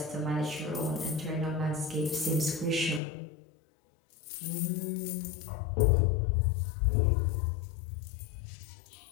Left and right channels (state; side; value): drops out; right; at 3.0 s